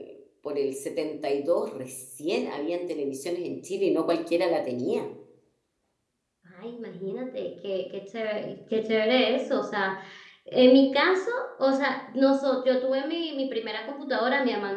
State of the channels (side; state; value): both; identical; correlation 1.00